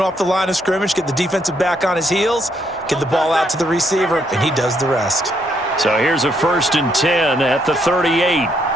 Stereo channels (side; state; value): both; normal; correlation 0.73